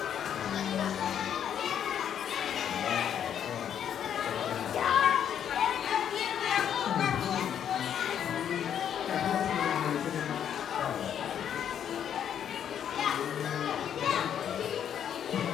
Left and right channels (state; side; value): quieter; right; 9.2 dB